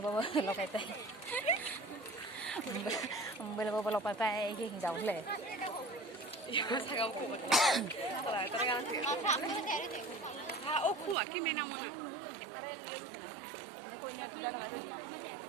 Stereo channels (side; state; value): left; drops out; at 11.2 s